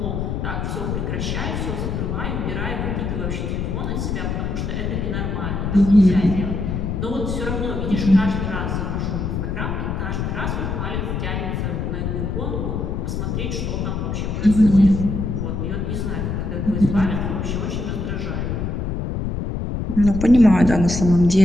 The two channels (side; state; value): left; noise; rumble, 2 dB below the sound